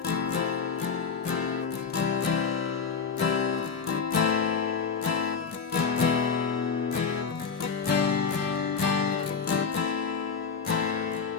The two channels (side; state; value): right; quieter; 5.6 dB